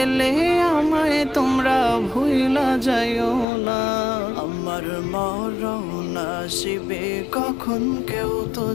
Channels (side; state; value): right; drops out; at 3.5 s